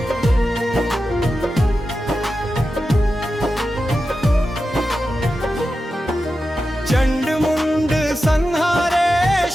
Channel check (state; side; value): normal; both; correlation 0.91